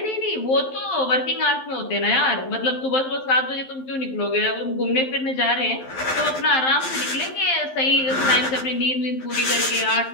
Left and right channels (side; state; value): right; late; 11 ms